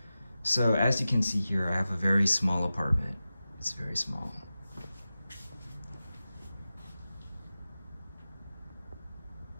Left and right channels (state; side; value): inverted; both; correlation -0.94